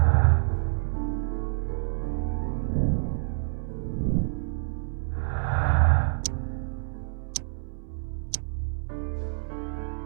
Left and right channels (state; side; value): silent; left; 60 dB below the other